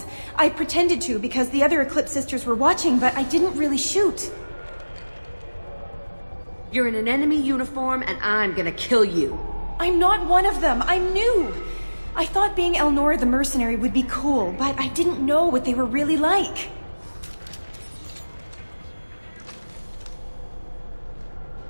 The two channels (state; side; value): inverted; both; correlation -1.00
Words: I pretended to because the other Eclipse sisters were watching, but I didn't really shoot. You're in an enemy uniform, and I'm gonna kill you. I'm not one of them. I'm new. I thought being Elnora the mercenary would be cool, but I didn't know what they were really like.